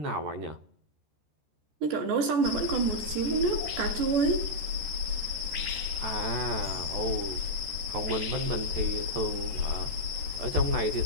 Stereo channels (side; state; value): left; late; 13 ms